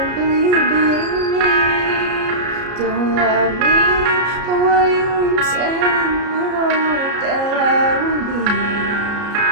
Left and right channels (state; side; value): late; left; 33 ms